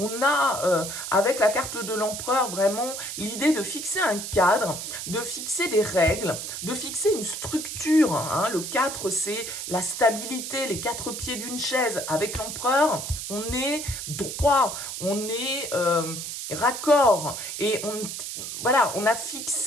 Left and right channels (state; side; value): noise; right; hiss, 6 dB below the sound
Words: a, avec la carte de l'empereur, vraiment l'idée de fixer un cadre, de fixer des règles, de fixer une structure. Hein. Le 4, c'est la stabilité, les 4 pieds d'une chaise. Avec l'empereur, on est droit, on est raccord et voilà, on a